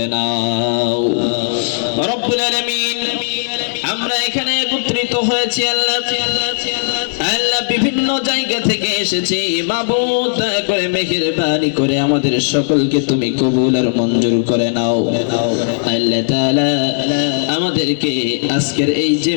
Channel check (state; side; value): silent; right; digital silence